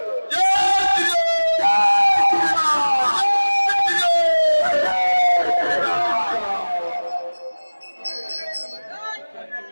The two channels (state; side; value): inverted; both; correlation -1.00